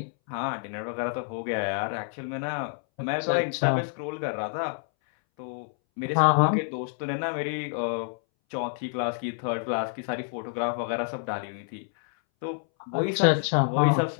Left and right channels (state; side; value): silent; right; 59 dB below the other